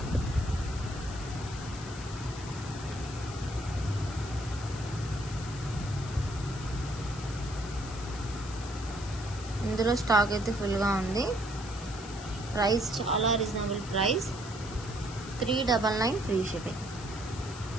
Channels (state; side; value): noise; left; hiss, 14 dB below the sound